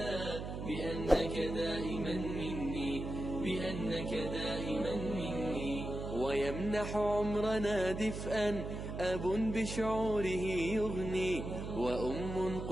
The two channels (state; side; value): noise; right; hum, 6 dB below the sound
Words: بأنك دائما مني، بأنك دائما مني. ويمنح عمرنا دفئا أب بشعوره يغني، وأم